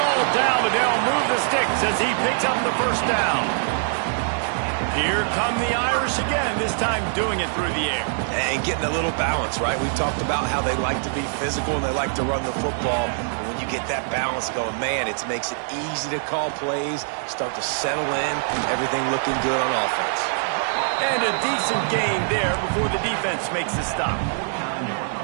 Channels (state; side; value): silent; left; digital silence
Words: All down, but they'll move the sticks as he picks up the first down. Here come the Irish again, this time doing it through the air. And getting a little balance, right? We've talked about how they like to be physical and they like to run the football. And when you get that balance going, man, it makes it easy to call plays, start to settle in, everything looking good on offense. And a decent gain there before the defense makes the stop.